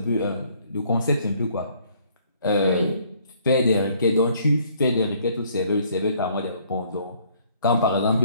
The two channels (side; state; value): both; inverted; correlation -0.63